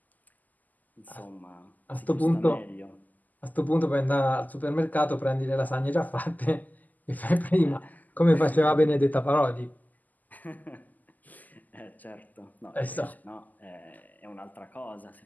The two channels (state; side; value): late; right; 0.082 ms